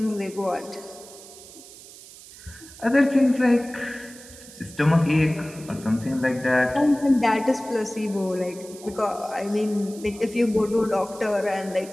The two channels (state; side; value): noise; right; hiss, 18 dB below the sound